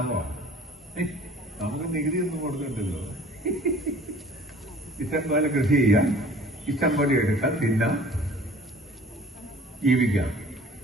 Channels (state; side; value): normal; both; correlation 0.49